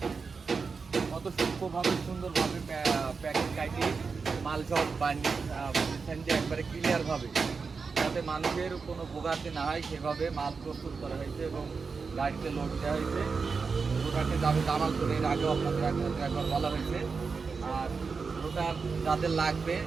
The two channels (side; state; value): left; quieter; 4.9 dB